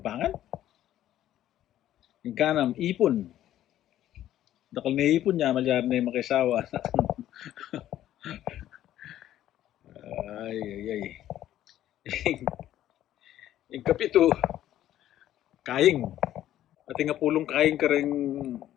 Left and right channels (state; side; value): quieter; right; 12.5 dB